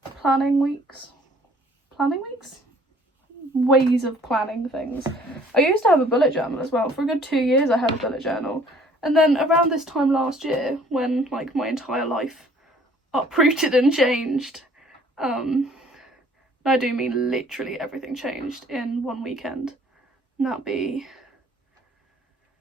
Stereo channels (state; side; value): normal; both; correlation 0.56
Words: planning weeks? Ways of planning things. I used to have a bullet journal as well. For a good 2 years I had a bullet journal. And then around this time last year, when like my entire life uprooted and changed, I do mean literally everything changed in one weekend. And that'll be